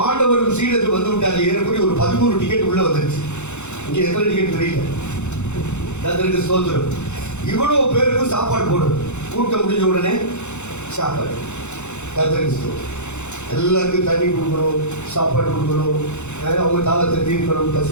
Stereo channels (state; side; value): late; right; 0.83 ms